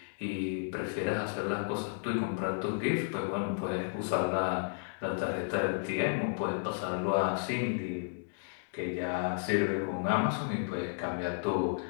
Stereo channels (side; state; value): right; silent; digital silence